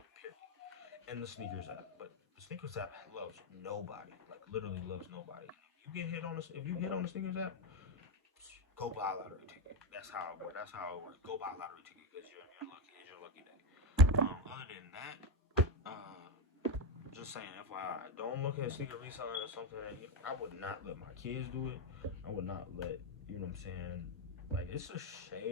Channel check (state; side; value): normal; both; correlation 0.09